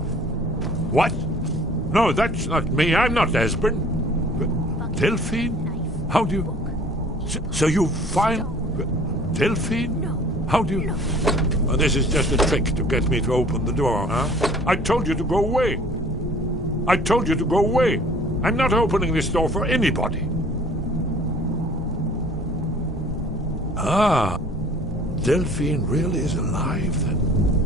What? No, that's not me. I'm not Esbern. Delphine? How do you... So you find... Delphine? How do you... Oh, this is just a trick to get me to open the door, huh? I told you to go away. I told you to go away. I'm not opening this door for anybody. Ah, Delphine really is alive, then.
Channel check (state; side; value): normal; both; correlation 0.51